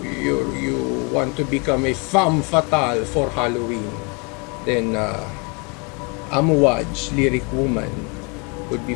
want to become a femme fatale for Halloween, then Amouage Lyric Woman would be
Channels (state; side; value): quieter; right; 31.3 dB